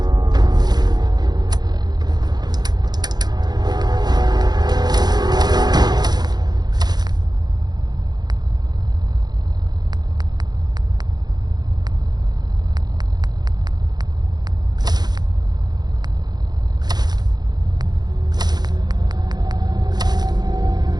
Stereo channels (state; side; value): late; left; 0.20 ms